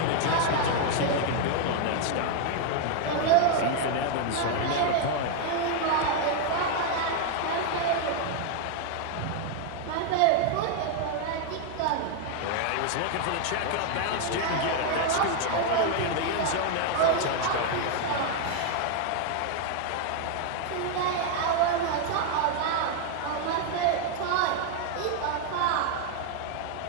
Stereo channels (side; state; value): both; different; correlation 0.00